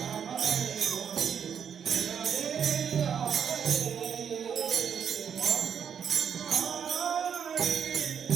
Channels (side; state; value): left; quieter; 7.8 dB